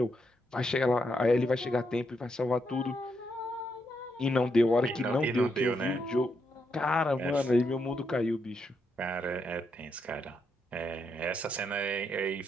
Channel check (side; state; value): both; normal; correlation 0.80